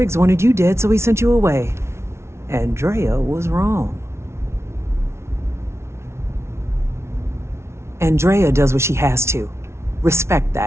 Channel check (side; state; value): left; late; 0.13 ms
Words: wanted you dead, so he sent you away. Andrea was wrong. Andrea does what she has to. Respect